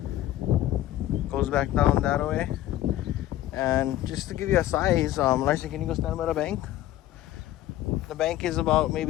goes back down that way, and just to give you a size, Larson, can you go stand by the bank? The bank is about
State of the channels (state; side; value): quieter; right; 13.8 dB